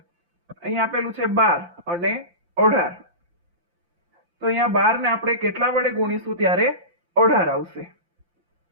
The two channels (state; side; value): late; left; 5.8 ms